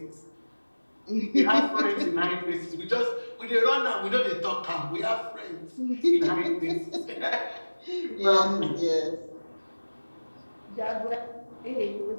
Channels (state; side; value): inverted; both; correlation -1.00